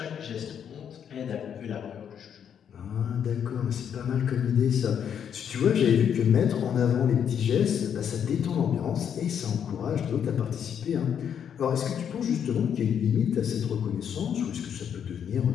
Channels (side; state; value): right; quieter; 8.4 dB